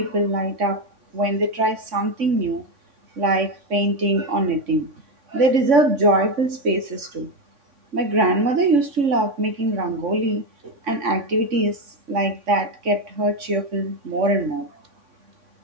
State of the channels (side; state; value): left; late; 3.6 ms